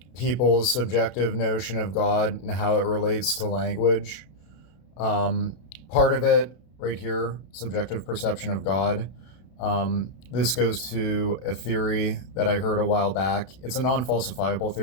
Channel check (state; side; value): late; right; 32 ms